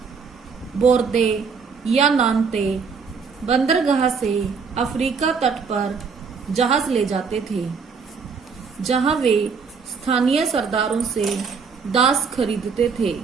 बोर्दे या नान्ते बंदरगाह से अफ्रीका तट पर जहाज ले जाते थे, जहां वे स्थानीय सरदारों से दास खरीदते थे।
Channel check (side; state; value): left; quieter; 5.5 dB